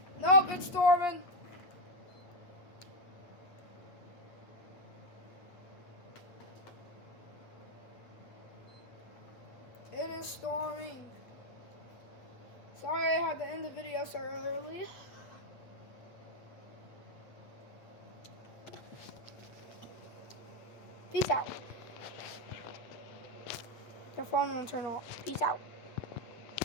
Nope, it's storming. It is storming. Sorry I had to end the video so early. Peace out. The phone won't turn off. Peace out.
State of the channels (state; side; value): late; right; 8.2 ms